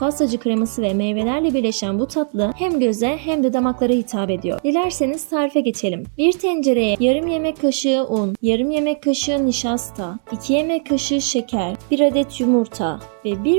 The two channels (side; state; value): left; silent; digital silence